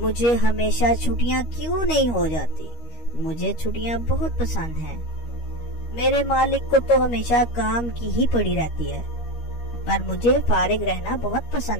हमेशा छुट्टियाँ क्यों नहीं हो जाती? मुझे छुट्टियाँ बहुत पसंद हैं। मेरे मालिक को तो हमेशा काम की ही पड़ी रहती है, पर मुझे फारिग रहना बहुत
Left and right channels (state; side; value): late; right; 13 ms